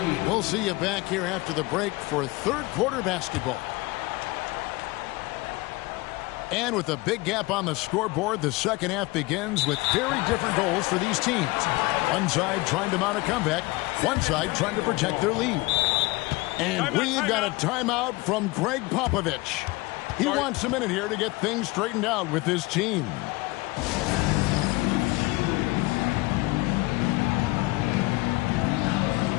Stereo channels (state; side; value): quieter; right; 22.4 dB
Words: We'll see you back here after the break for third quarter basketball. And with a big gap on the scoreboard, the second half begins with very different goals for these teams. One side trying to mount a comeback, one side trying to protect their lead. And we've got a timeout from Greg Popovich. He wants a minute here to get things straightened out with his team.